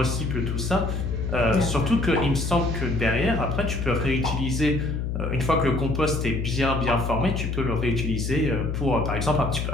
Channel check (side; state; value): left; noise; hum, 1 dB below the sound